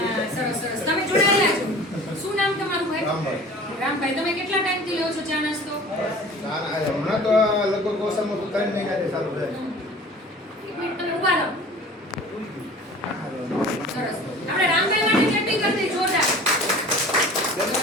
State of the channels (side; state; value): both; normal; correlation 0.43